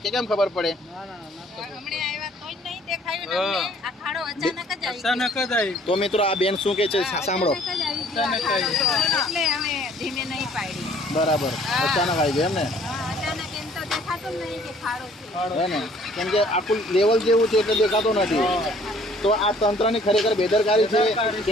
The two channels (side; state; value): both; normal; correlation 0.57